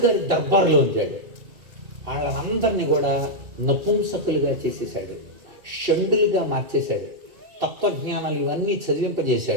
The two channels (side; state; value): left; late; 2.8 ms